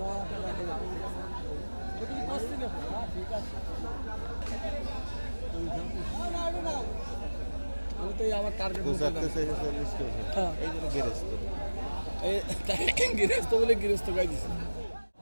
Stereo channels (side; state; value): both; inverted; correlation -1.00